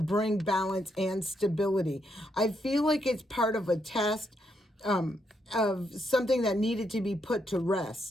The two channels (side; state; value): both; normal; correlation 0.78